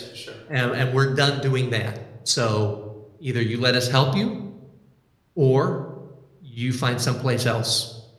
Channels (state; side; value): identical; both; correlation 1.00